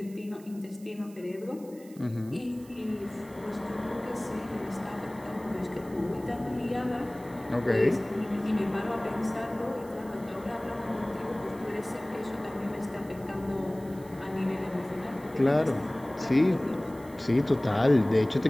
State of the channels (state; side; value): noise; right; hiss, 24 dB below the sound